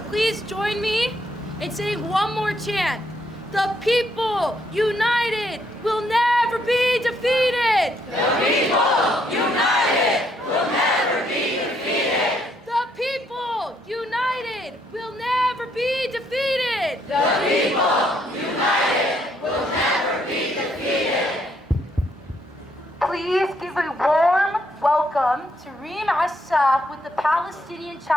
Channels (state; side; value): normal; both; correlation 0.72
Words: please join me in saying one more chant. The people united will never be defeated. The people united will never be defeated! The people united will never be defeated. The people united will never be defeated! Please give a warm welcome to Reem Assaf with the Palestinian